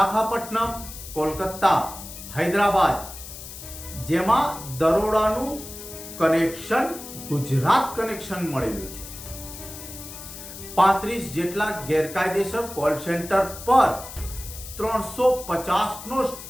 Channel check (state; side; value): noise; left; hiss, 13 dB below the sound